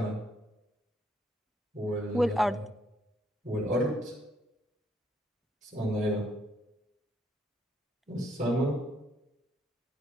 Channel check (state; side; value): normal; both; correlation 0.71